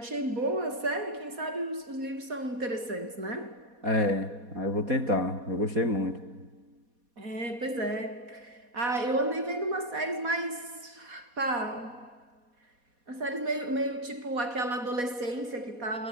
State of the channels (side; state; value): left; late; 4.2 ms